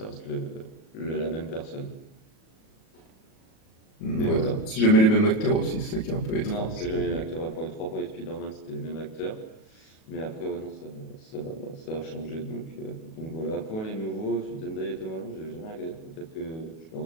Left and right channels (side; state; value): right; late; 37 ms